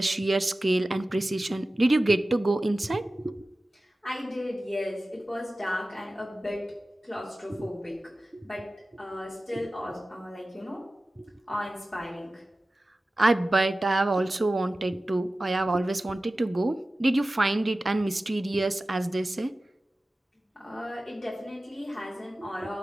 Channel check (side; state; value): both; normal; correlation 0.96